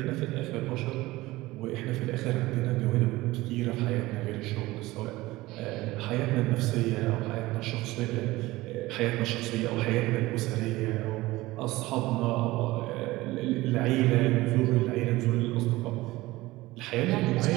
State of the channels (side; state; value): left; quieter; 19.0 dB